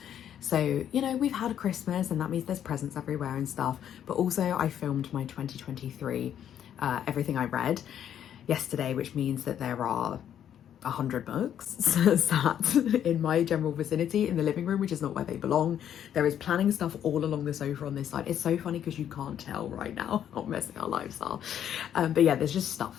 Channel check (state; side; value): quieter; right; 9.8 dB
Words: So, you know, we've had a Christmas and that means there's presents everywhere and stuff. But also I filmed my 2023, everything I read yesterday, which means that there are 100 books sat in my general vicinity in the living room, which is not where they belong. There is planning stuff all along the sofa on this side. It's so funny because you can't tell right now how messy our lives are. But yeah, there's just